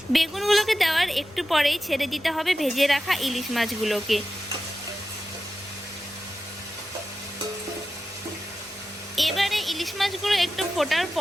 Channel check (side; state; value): both; normal; correlation 0.92